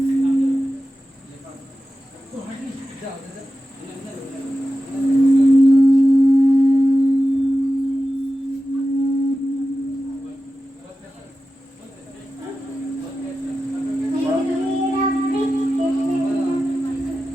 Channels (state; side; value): normal; both; correlation 0.93